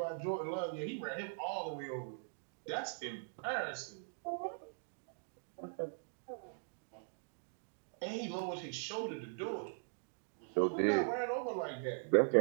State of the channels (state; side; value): silent; left; digital silence